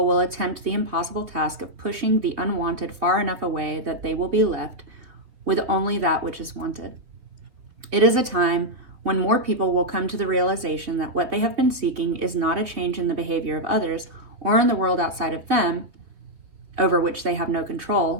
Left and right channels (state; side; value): late; left; 3.5 ms